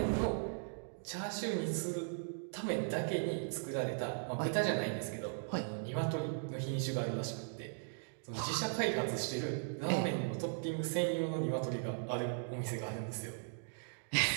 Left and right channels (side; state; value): left; silent; digital silence